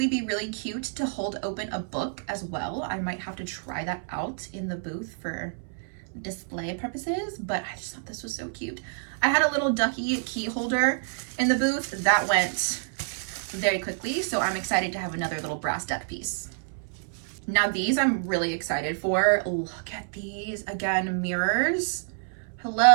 be really cute to hold open a book as well. I might have to try that out in the booth for display purposes, but I just thought this was so cute. I had a little ducky key holder in the booth that went very quickly, so I'm excited to have another little brass duck piece. Now these I'm really excited for. Look at these. Again, mirrors.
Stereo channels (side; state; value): left; silent; 59 dB below the other